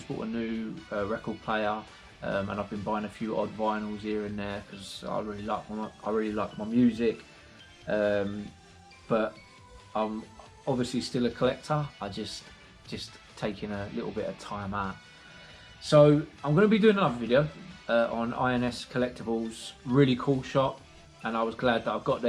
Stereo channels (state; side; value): identical; both; correlation 1.00